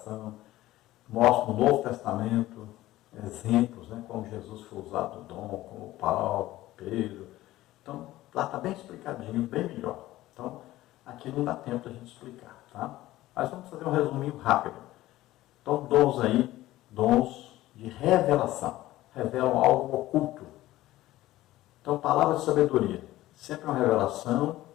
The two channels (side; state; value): right; quieter; 16.1 dB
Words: mostro no Novo Testamento exemplos, né? Como Jesus foi usado o dom, como Paulo, Pedro. Então, lá está bem explicadinho, bem melhor. Então, aqui não dá tempo da gente explicar, tá? Mas vamos fazer um resuminho rápido. Então, dons aí, dons de revelação. Revelam algo oculto. Então, palavra de sabedoria. Sempre uma revelação